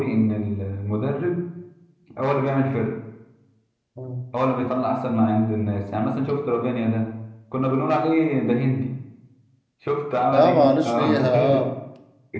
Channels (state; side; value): identical; both; correlation 1.00